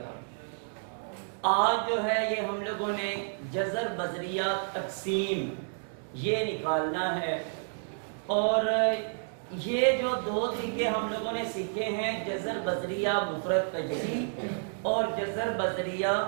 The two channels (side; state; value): left; silent; digital silence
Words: تھا۔ آج جو ہے یہ ہم لوگوں نے جزر بذریعہ تقسیم یہ نکالنا ہے، اور یہ جو دو طریقے ہم لوگوں نے سیکھے ہیں، جزر بذریعہ مفرد تجزی اور جزر بذریعہ